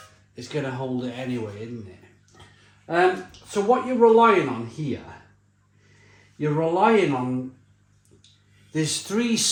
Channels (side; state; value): both; identical; correlation 1.00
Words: it's going to hold it anyway, isn't it? So what you're relying on here, you're relying on, there's 3